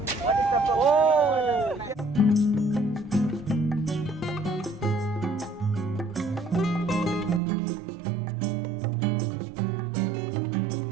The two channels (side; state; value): left; drops out; at 7.4 s